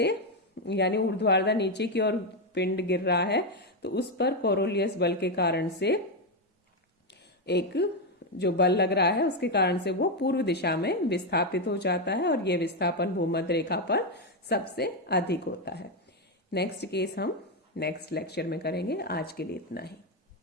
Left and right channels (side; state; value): both; normal; correlation 0.06